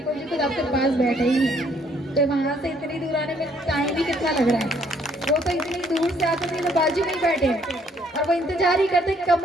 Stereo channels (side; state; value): both; normal; correlation 0.66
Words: जी खुद आपके पास बैठे ही हैं, तो वहां से इतनी दूर आने में टाइम भी कितना लग रहा है। वो तो इतनी दूर से आते थे तो बाजू में ही बैठे हैं और वो इंतजार ही करते कब